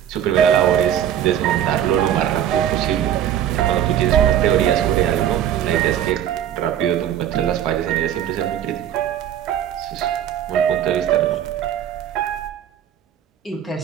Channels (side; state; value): left; quieter; 10.5 dB